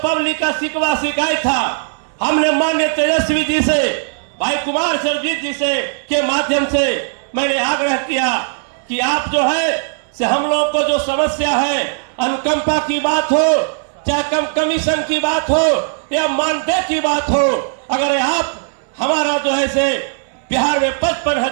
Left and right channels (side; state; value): left; silent; 68 dB below the other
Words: पब्लिक का शिकवा शिकायत था, हमने माननीय तेजस्वी जी से, भाई कुमार सरजीत जी से के माध्यम से मैंने आग्रह किया कि आप जो है से हम लोग को जो समस्या है, अनुकंपा की बात हो, चाहे कम कमीशन की बात हो या मानदेय की बात हो, अगर आप हमारा जो है से बिहार में